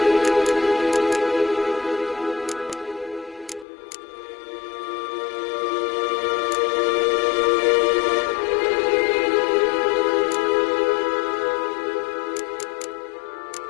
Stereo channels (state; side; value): drops out; right; at 3.7 s